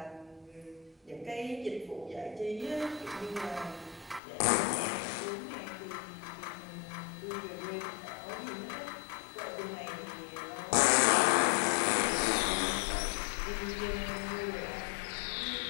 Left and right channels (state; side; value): drops out; right; at 4.2 s